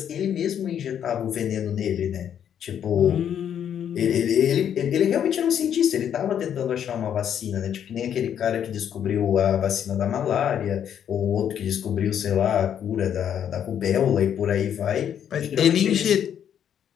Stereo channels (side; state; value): right; quieter; 9.2 dB